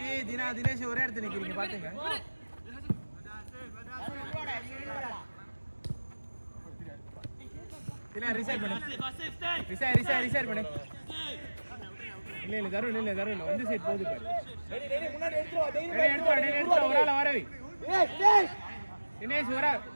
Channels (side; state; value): both; inverted; correlation -1.00